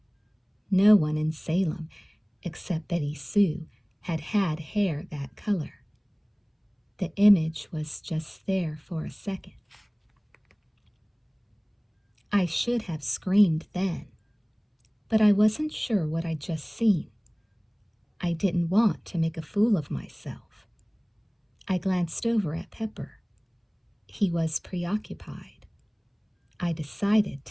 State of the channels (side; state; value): both; identical; correlation 1.00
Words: No one in Salem, except Betty Sue, had had hair that color. The image was just there for a second. I should have screamed then, but I wasn't sure what I'd just seen. I didn't want to make a fool of myself. I glanced over at Pepper. He was preoccupied. I decided